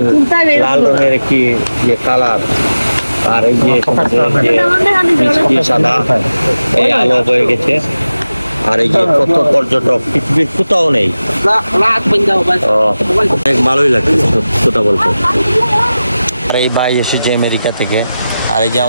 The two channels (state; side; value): inverted; both; correlation -0.95